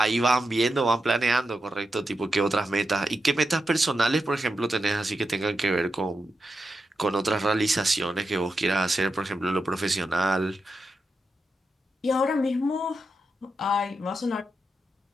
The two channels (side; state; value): both; normal; correlation 0.87